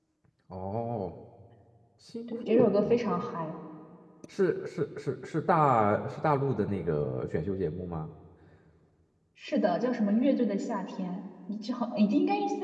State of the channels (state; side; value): identical; both; correlation 1.00